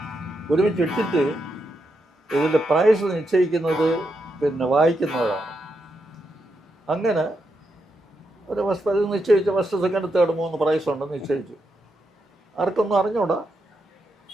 ഒരുമിച്ചിട്ടിട്ട് ഇതിൻ്റെ പ്രൈസ് നിശ്ചയിക്കുന്നത് പിന്നെ വായിക്കുന്നവരാണ്. അങ്ങനെ ഒരു ഫസ്റ്റ് പ്രൈസ് നിശ്ചയിച്ചു. ഫസ്റ്റ് സെക്കൻഡ് തേർഡ് 3 പ്രൈസ് ഉണ്ടെന്ന് നിശ്ചയിച്ചു. ആർക്കൊന്നും അറിഞ്ഞൂടാ.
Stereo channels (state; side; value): normal; both; correlation 0.83